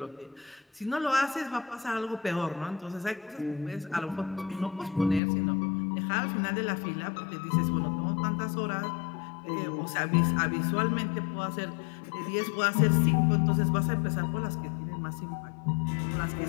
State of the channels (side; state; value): right; drops out; at 5.2 s